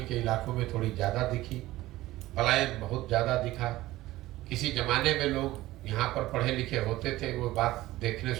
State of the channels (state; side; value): quieter; left; 16.9 dB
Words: के इलाकों में थोड़ी ज़्यादा दिखी, पलायन बहुत ज़्यादा दिखा। किसी ज़माने में लोग यहाँ पर पढ़े लिखे होते थे, वो बात देखने